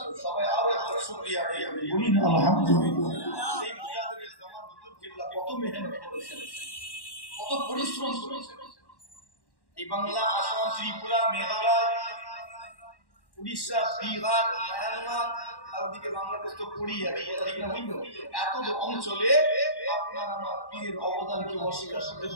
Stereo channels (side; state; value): right; late; 1.1 ms